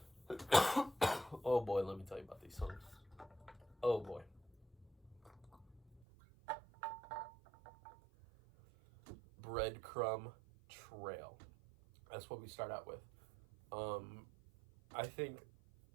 Oh boy, let me tell you about these songs. Oh boy. Breadcrumb Trail. That's what we start out with. I think,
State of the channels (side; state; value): left; drops out; at 6.0 s